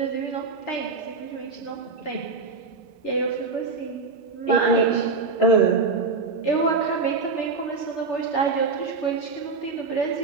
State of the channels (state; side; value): quieter; left; 4.3 dB